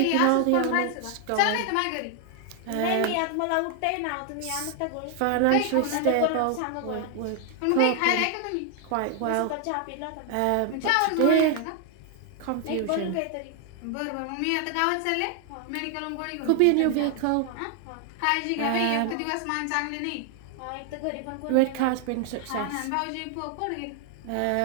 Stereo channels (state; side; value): different; both; correlation 0.00